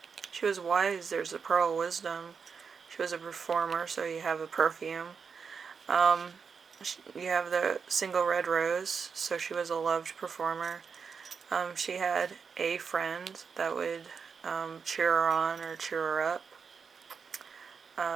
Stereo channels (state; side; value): quieter; left; 5.9 dB